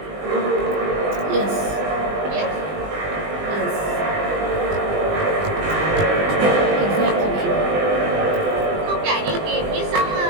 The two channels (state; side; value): late; left; 20 ms